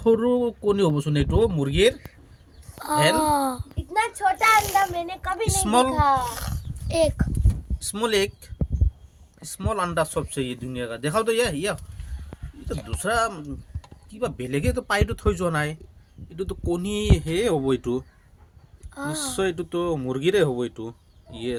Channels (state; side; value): identical; both; correlation 1.00